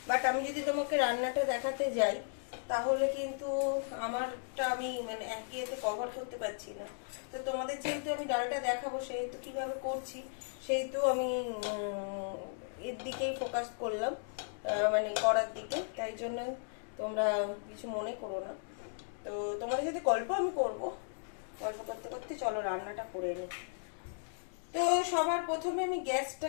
বাট আমি যদি তোমাকে রান্নাটা দেখাতে যাই তাহলে কিন্তু আমারটা আমি মানে এক ইয়েতে কভার করতে পারছি না। তো তোমাদের যেহেতু আমি ডালটা দেখাবো, সেহেতু কিভাবে করছি সেহেতু আমি এর দিকেই ফোকাস করলাম, মানে করার দিকে। তাই জন্য তোমরা কিছু মনে করো না। তো তোমাদের সাথে গল্প আমি করব, গল্প করতে করতে চলো রান্নাটা করে নিই। তো সবার প্রথমে আমি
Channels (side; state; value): right; silent; digital silence